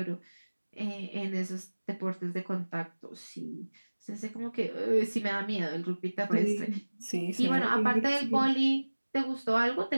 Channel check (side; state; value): both; inverted; correlation -1.00